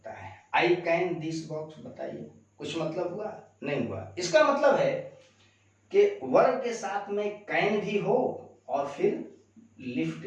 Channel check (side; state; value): both; identical; correlation 1.00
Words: है। आई कैन दिस बॉक्स, बताइए कुछ मतलब हुआ? नहीं हुआ। इसका मतलब है कि वर्ब के साथ में कैन भी हो और फिर लिफ्ट